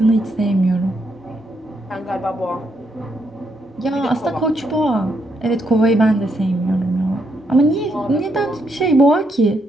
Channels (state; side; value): normal; both; correlation 0.77